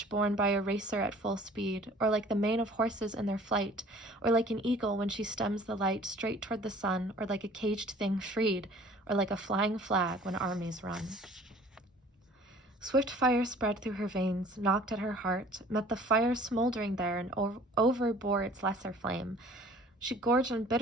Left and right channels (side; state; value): both; normal; correlation 0.50